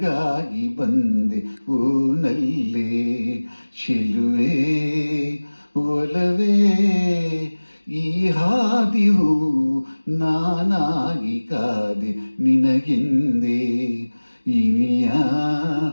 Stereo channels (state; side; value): inverted; both; correlation -1.00